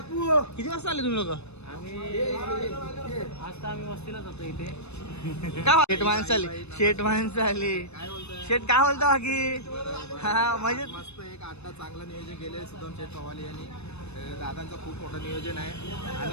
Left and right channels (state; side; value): late; right; 0.80 ms